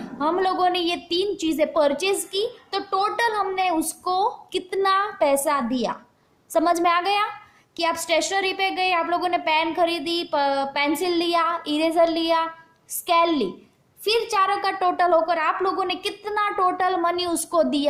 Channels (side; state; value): both; identical; correlation 1.00